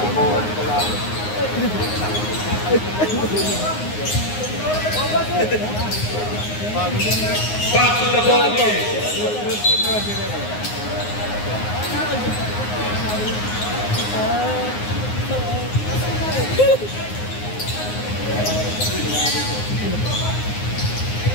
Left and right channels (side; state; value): right; late; 9.6 ms